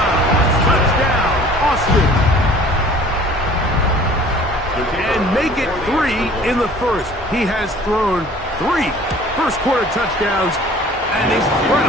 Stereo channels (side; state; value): both; normal; correlation 0.49